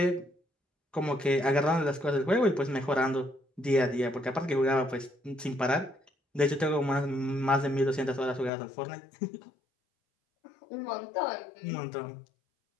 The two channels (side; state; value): right; drops out; at 8.5 s